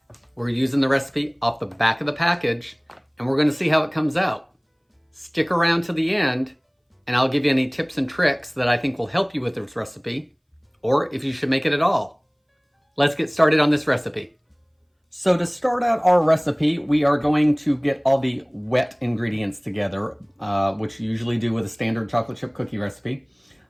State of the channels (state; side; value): identical; both; correlation 1.00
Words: We're using the recipe off the back of the package, and we're going to see how it comes out. Stick around to the end, and I'll give you any tips and tricks that I think will help you with this recipe, or if you should make it at all. Let's get started on this recipe. So to start out our recipe, we are going to get all the wet ingredients together, which you usually do with a standard chocolate chip cookie recipe.